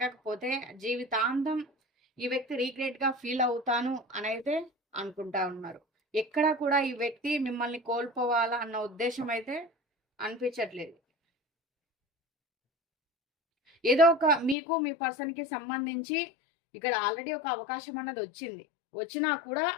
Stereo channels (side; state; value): right; drops out; at 14.6 s